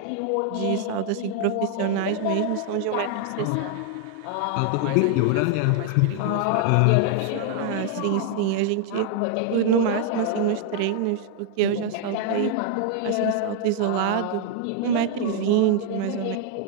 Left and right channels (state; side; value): different; both; correlation 0.00